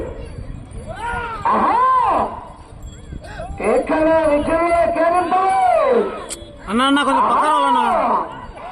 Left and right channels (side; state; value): both; identical; correlation 1.00